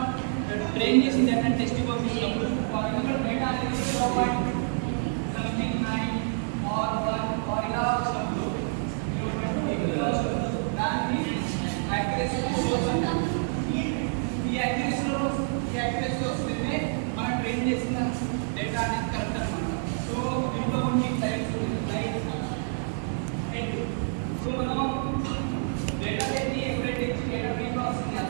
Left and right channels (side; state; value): left; silent; digital silence